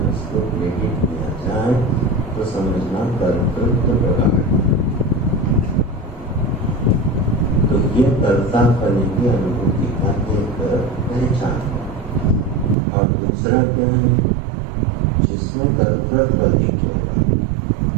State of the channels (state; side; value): drops out; left; at 12.8 s